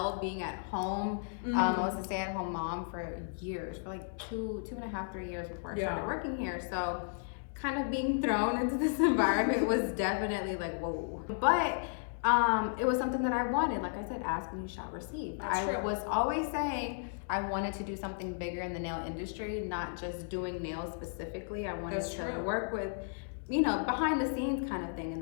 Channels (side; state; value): right; silent; 55 dB below the other